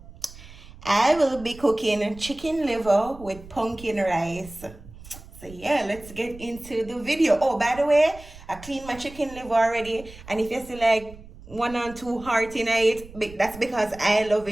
I will be cooking chicken liver with pumpkin rice. So yeah, let's get into the video. Oh, by the way, I cleaned my chicken liver already, and if you see like one or two heart in it, that's because I love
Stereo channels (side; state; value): right; noise; rumble, 18 dB below the sound